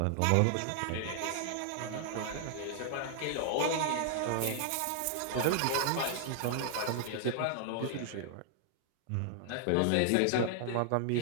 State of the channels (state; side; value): different; both; correlation 0.00